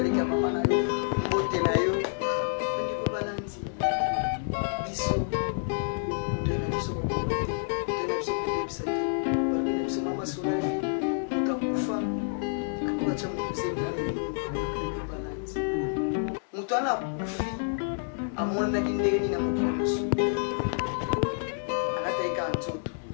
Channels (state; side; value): silent; right; digital silence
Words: ya mama na yo mbote na yo ndiko balandi biso toye na biso kokoma te toye na biso kobebisa te balobi na biso mama solavi moto akufa akokatia moto zemi na nini ndiko balandi moto wana akufi amonaki ndenge nini na mokili mosusu alataika nzoto